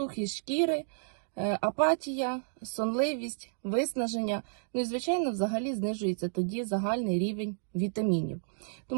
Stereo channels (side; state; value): left; silent; digital silence